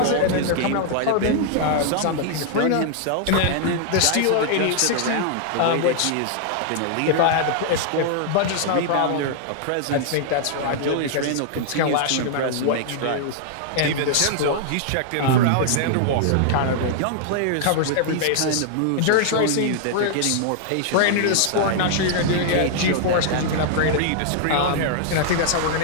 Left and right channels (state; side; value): different; both; correlation -0.01